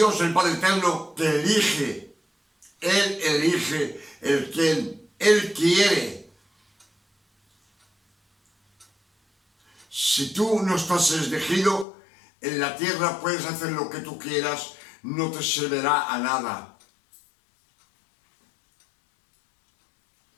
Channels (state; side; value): drops out; right; at 11.9 s